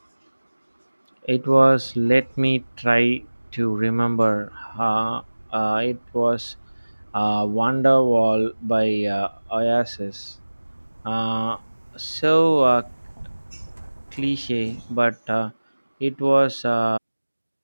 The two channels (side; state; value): both; inverted; correlation -1.00